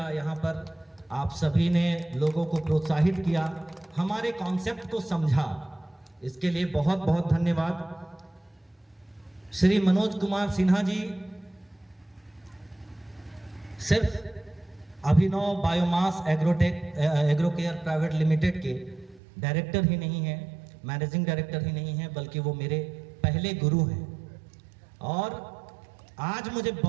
यहाँ पर आप सभी ने लोगों को प्रोत्साहित किया, हमारे कॉन्सेप्ट को समझा, इसके लिए बहुत बहुत धन्यवाद। श्री मनोज कुमार सिन्हा जी सिर्फ अभिनव बायोमास एग्रोकेयर प्राइवेट लिमिटेड के डायरेक्टर ही नहीं हैं, मैनेजिंग डायरेक्टर ही नहीं हैं, बल्कि वो मेरे पहले गुरु हैं। और आज मुझे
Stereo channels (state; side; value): drops out; left; at 19.2 s